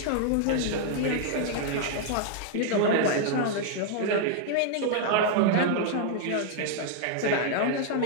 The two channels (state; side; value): different; both; correlation 0.00